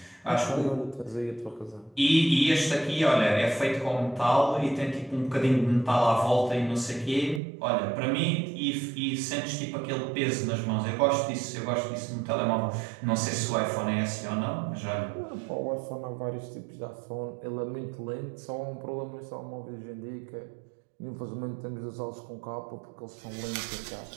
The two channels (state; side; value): drops out; left; at 7.4 s